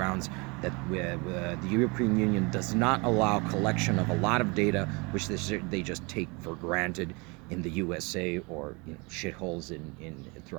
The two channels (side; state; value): left; quieter; 28.5 dB